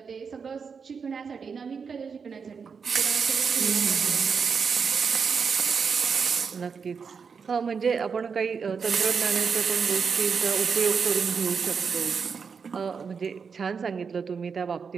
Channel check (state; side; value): quieter; left; 5.8 dB